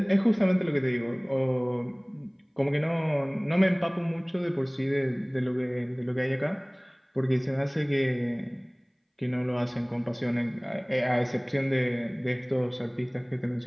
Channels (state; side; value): identical; both; correlation 1.00